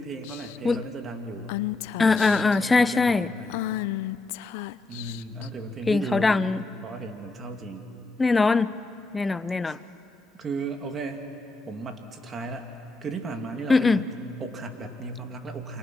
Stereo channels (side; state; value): right; quieter; 3.2 dB